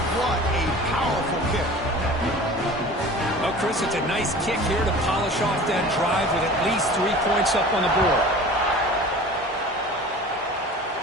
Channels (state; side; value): normal; both; correlation 0.41